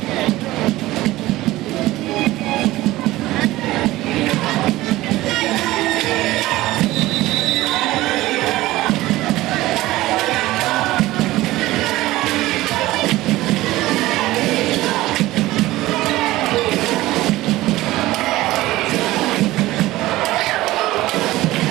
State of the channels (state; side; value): quieter; left; 17.4 dB